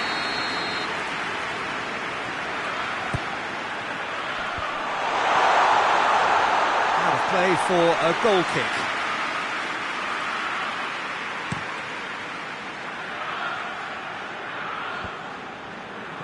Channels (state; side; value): identical; both; correlation 1.00